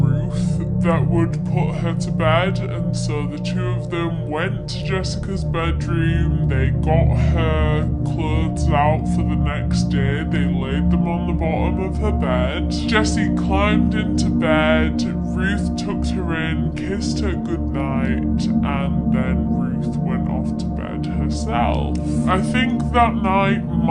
that would put her to bed, and so the two of them went to Jessica's bedroom. They got her clothes out for the next day. They laid them on the bottom of her bed. Jessie climbed into bed. Ruth tucked her in, kissed her goodnight, and then Ruth went off to bed herself. I think that night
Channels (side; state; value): both; identical; correlation 1.00